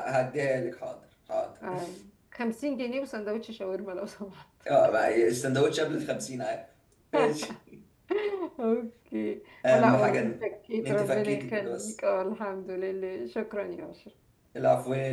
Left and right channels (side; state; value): both; identical; correlation 1.00